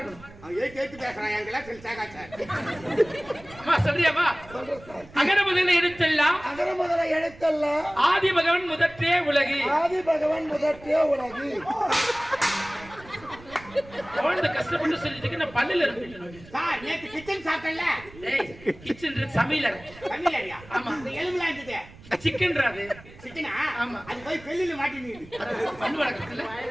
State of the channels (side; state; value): right; noise; rumble, 20 dB below the sound